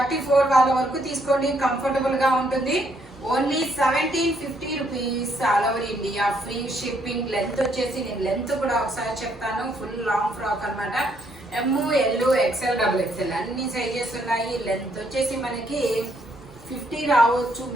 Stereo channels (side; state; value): both; normal; correlation 0.71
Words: వాళ్ళ వరకు తీసుకోండి, కంఫర్టబుల్ గా ఉంటుంది. Only 1750 rupees all over India, free shipping. Length వచ్చేసి నేను లెంత్ కూడా ఒకసారి చెప్తాను. ఫుల్ లాంగ్ ఫ్రాక్ అన్నమాట. ఎం, ఎల్, ఎక్స్ఎల్, డబుల్ ఎక్స్ఎల్ అన్ని సైజెస్ ఉన్నాయి. లెంత్ వచ్చేసి మనకి 50 రావచ్చు